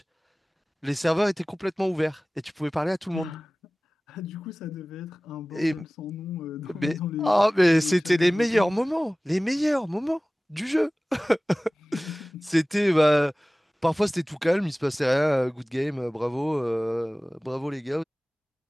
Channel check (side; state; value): both; normal; correlation 0.98